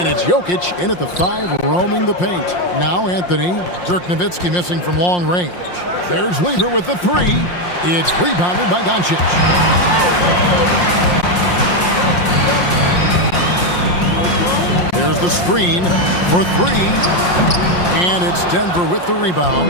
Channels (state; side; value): late; right; 5.6 ms